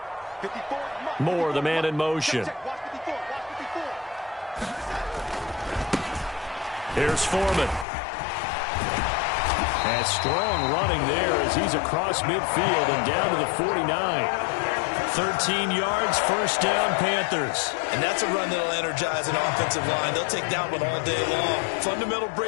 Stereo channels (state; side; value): drops out; right; at 7.9 s